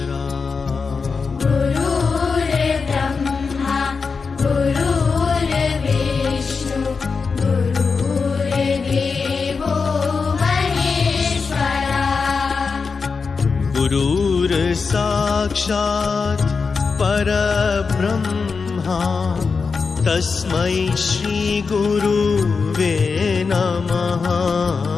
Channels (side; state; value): right; quieter; 5.0 dB